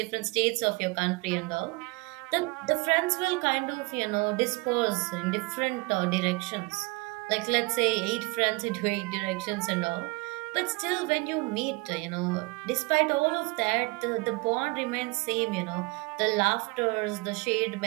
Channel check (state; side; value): quieter; left; 26.5 dB